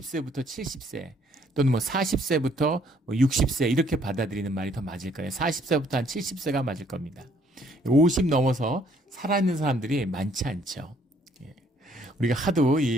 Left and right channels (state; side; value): normal; both; correlation 0.64